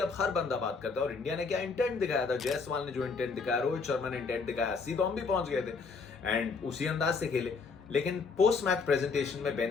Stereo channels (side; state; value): right; quieter; 4.8 dB